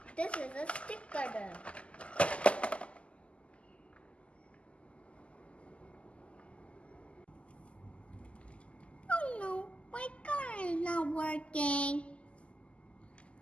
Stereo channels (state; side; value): late; right; 0.057 ms